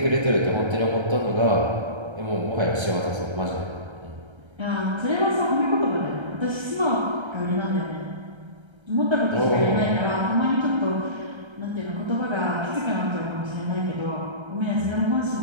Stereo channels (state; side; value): late; left; 1.3 ms